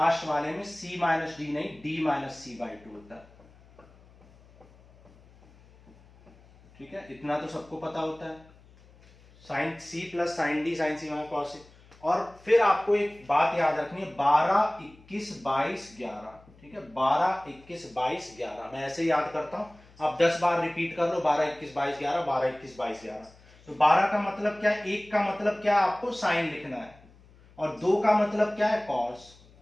वाले में c माइनस डी नहीं, d माइनस सी बाई 2 होता है। ठीक है, इतना तो सबको पता होता है। साइन सी प्लस साइन डी, साइन सी माइनस कॉस सी। और फिर आपको एक बात याद रखनी है, 12 21 22 11। ठीक है, 12 21 22 11 मैं ऐसे याद करता हूं, आप 10 बार रिपीट कर लो, 12 21 22 11, 12 21 22 11। तो 12 का मतलब क्या है, 1 का मतलब क्या है, आपको साइन लिखना है, और 2 का मतलब क्या है, कॉस।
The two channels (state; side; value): noise; left; hum, 26 dB below the sound